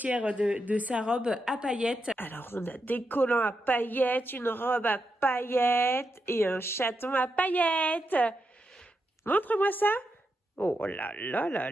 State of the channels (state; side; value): normal; both; correlation 0.85